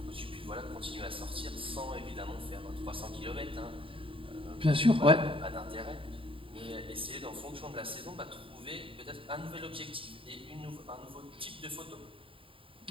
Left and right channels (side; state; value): left; late; 0.26 ms